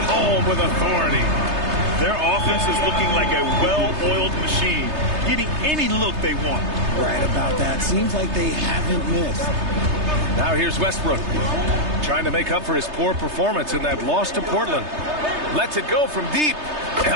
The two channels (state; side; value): late; left; 3.3 ms